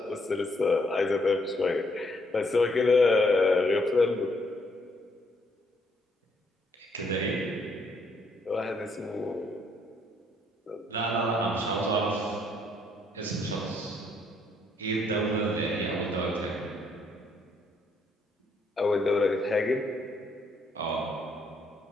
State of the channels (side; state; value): both; normal; correlation 0.70